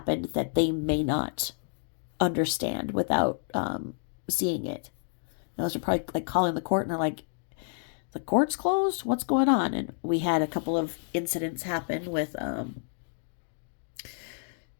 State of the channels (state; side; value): silent; right; 58 dB below the other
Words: that they may not understand without seeing it. Those are probably like calling the court and they're like, the court's closed? What's going on? And we had a couple of incidents happen with, I